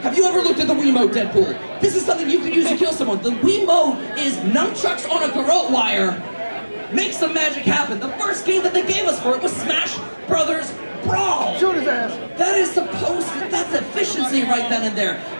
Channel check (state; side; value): inverted; both; correlation -1.00